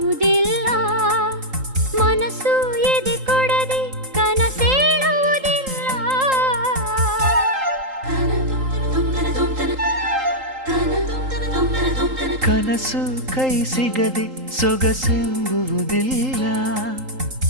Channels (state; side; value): late; left; 3.8 ms